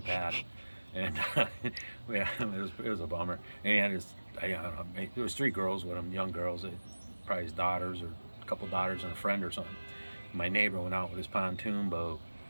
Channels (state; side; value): inverted; both; correlation -1.00